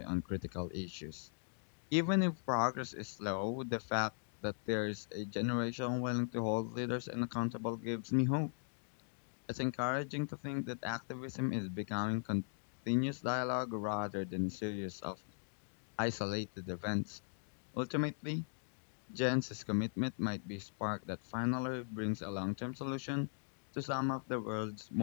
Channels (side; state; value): right; silent; digital silence